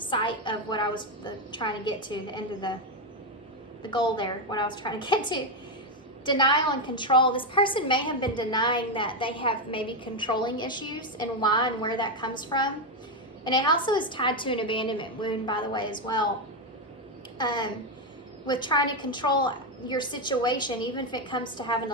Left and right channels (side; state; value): both; normal; correlation 0.07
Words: of what I was trying to get to, the end of the goal there, what I was trying to get to. Denial and control. This person may have been denying that they have maybe controlling issues and why and where that comes from. And it also is tied to an abandonment wound, by the way, as well. With trying to control your situation, even if it comes to having